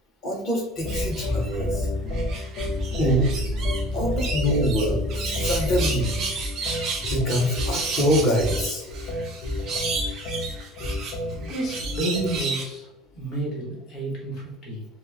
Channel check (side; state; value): both; normal; correlation 0.47